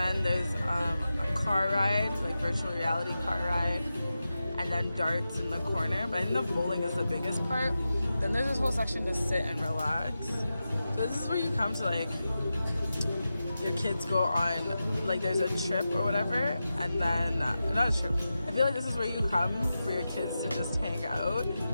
there's a car ride, like virtual reality car ride. And then darts in the corner. But I think the bowling is the biggest part. Then there's this whole section to sit and relax. So this is where you come to like, your kids go on, like there's a trip or whatever, and then, not a trip. I feel like this is where you come for your kids to just hang out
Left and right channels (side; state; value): both; inverted; correlation -0.92